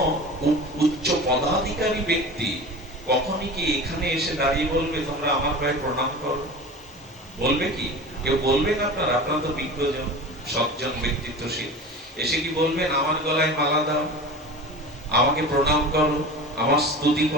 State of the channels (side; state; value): both; normal; correlation 0.34